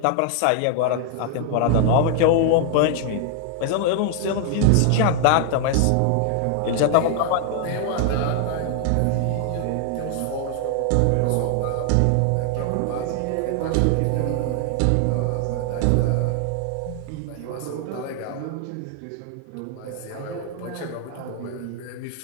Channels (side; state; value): both; different; correlation 0.00